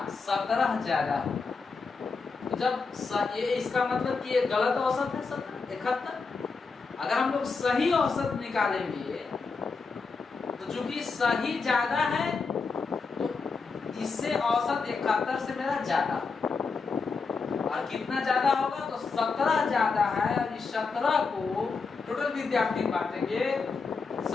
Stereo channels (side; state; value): right; quieter; 4.7 dB